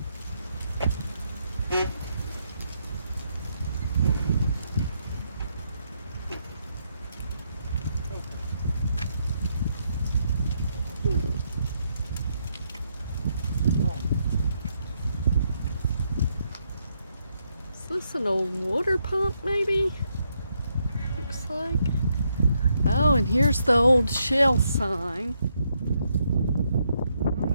Is this an old water pump maybe? Looks like. Oh, and here's the old Shell sign.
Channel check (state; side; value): inverted; both; correlation -0.77